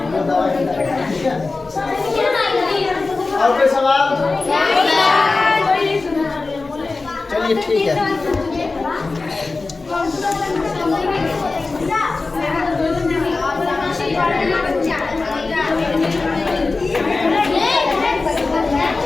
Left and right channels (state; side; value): quieter; right; 3.7 dB